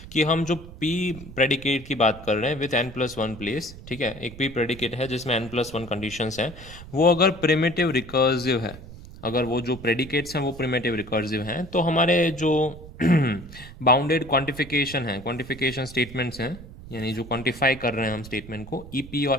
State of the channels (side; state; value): right; noise; rumble, 15 dB below the sound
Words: कि हम जो p प्रेडिकेट की बात कर रहे हैं विथ n+1 प्लेस, ठीक है, एक p प्रेडिकेट है जिसमें n+1 कंडीशंस हैं, वो अगर प्रिमिटिव रिकर्सिव है, अगर वो जो प्रेडिकेट्स हैं वो प्रिमिटिव रिकर्सिव हैं, तो हमारे जो बाउंडेड क्वांटिफिकेशन है, क्वांटिफिकेशन स्टेटमेंट्स हैं, यानी जो क्वांटिफाई कर रहे हैं हम स्टेटमेंट को, EP